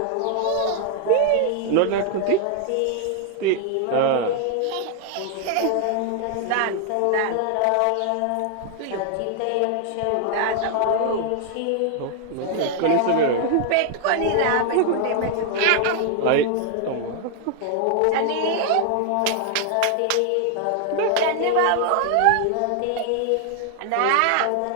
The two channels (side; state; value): both; different; correlation 0.00